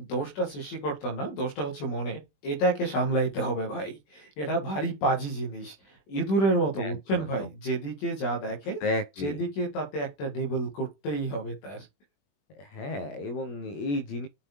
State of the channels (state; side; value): late; right; 21 ms